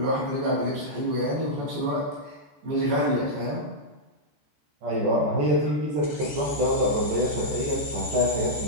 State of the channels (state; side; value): late; left; 14 ms